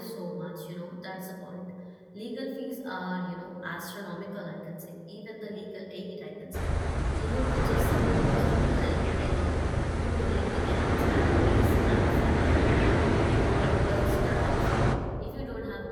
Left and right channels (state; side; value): identical; both; correlation 1.00